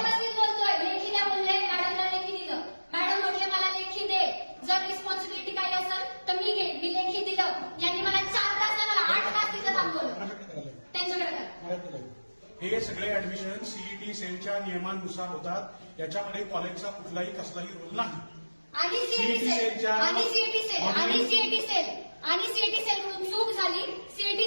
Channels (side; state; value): both; inverted; correlation -1.00